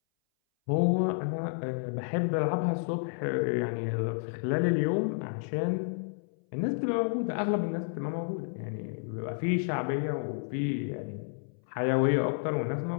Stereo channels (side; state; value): right; silent; 57 dB below the other